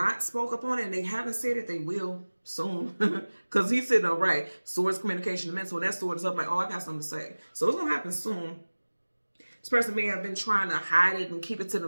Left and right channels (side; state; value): both; inverted; correlation -1.00